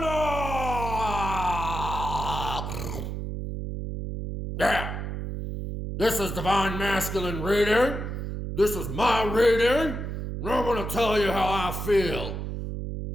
Yeah, this is Divine Masculine Reading. This is my reading. And I'm going to tell you how I feel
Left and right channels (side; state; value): right; noise; hum, 5 dB below the sound